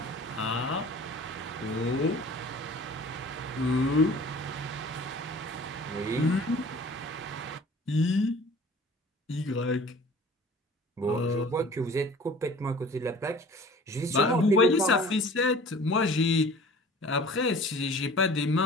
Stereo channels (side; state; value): both; normal; correlation 0.45